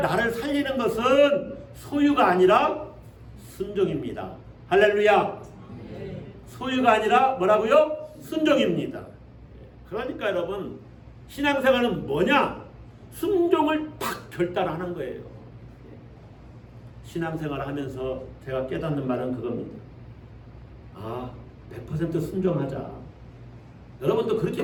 살리는 것은 소유가 아니라 순종입니다. 할렐루야. 소유가 아니라 뭐라고요? 순종입니다. 그러니까 여러분 신앙생활은 뭐냐? 순종을 팍 결단하는 거예요. 신앙생활 하면서 제가 깨닫는 말은 그겁니다. 100% 순종하자. 여러분도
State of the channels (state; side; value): identical; both; correlation 1.00